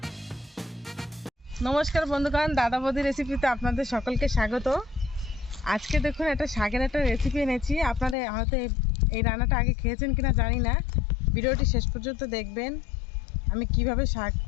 নমস্কার বন্ধুগণ, দাদা বৌদি রেসিপিতে আপনাদের সকলকে স্বাগত। আজকে দেখুন একটা শাকের একটা রেসিপি এনেছি। আপনারা হয়তো এই রান্নাটা আগে খেয়েছেন কিনা জানি না, ভিডিওটি শেষ পর্যন্ত দেখবেন। আমি কিভাবে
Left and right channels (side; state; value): right; drops out; at 8.2 s